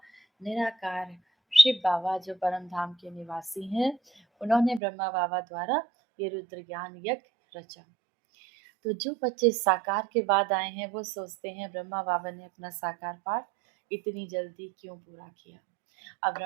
निराकार शिव बाबा जो परम धाम के निवासी हैं, उन्होंने ब्रह्मा बाबा द्वारा ये रुद्र ज्ञान यज्ञ रचा। तो जो बच्चे साकार के बाद आए हैं वो सोचते हैं ब्रह्मा बाबा ने अपना साकार पाठ इतनी जल्दी क्यों पूरा किया। अब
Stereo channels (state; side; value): drops out; left; at 4.8 s